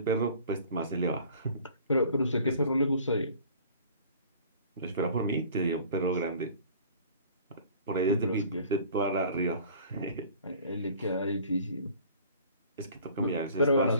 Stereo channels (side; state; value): both; inverted; correlation -0.49